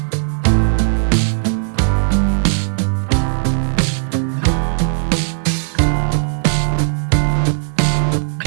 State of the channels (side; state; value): left; silent; digital silence